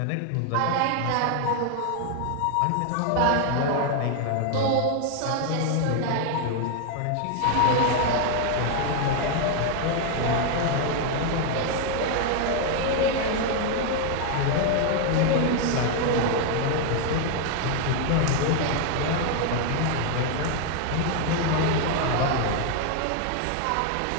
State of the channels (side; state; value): both; different; correlation 0.01